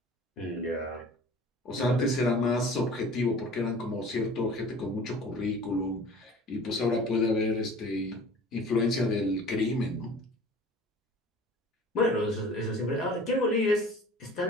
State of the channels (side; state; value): both; normal; correlation 0.44